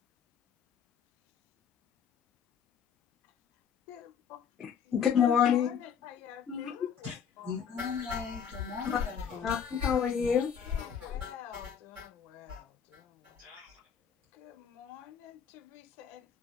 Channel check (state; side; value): quieter; right; 7.7 dB